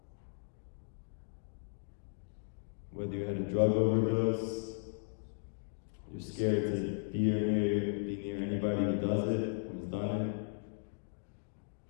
Whether you had a drug overdose, you're scared to be near anybody who does it or has done it.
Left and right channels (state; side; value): silent; right; digital silence